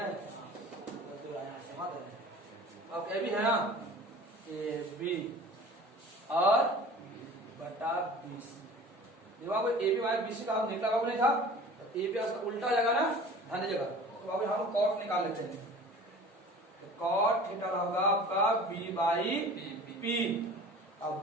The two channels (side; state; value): both; normal; correlation 0.42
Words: अब ए बी है ना, ए बी और बटा बी सी। देखो बाबू A B by B C का निकला बाबू नहीं था, ए बी उसका उल्टा जगह ना ध्यान जगह, तो बाबू हम कॉट निकाल लेते हैं, तो कॉट थीटा होगा आपका बी बाई पी। अब